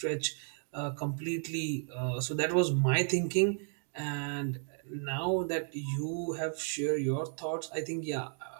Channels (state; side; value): silent; left; 55 dB below the other